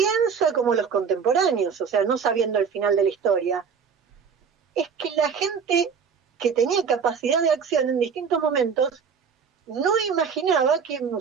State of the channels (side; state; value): left; quieter; 6.3 dB